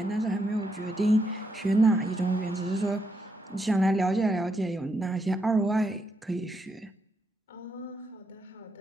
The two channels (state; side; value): normal; both; correlation 0.80